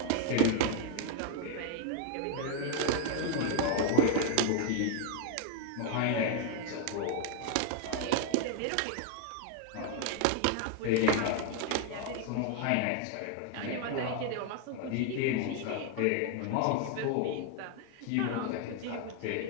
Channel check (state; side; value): different; both; correlation 0.00